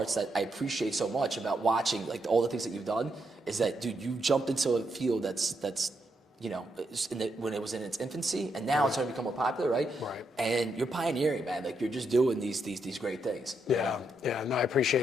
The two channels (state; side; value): normal; both; correlation 0.80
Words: that I appreciate so much about watching like all the things that you've done is that, dude, you jumped into a field that's you know, when it was in its infancy, and now it's starting to become more popular, right? And you're pioneering, man. Like you're just doing these great things. No, I